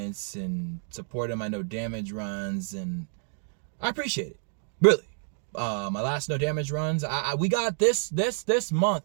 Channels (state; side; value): silent; left; digital silence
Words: and supporting my no damage runs, and I appreciate it, really. My last no damage runs, we got this month,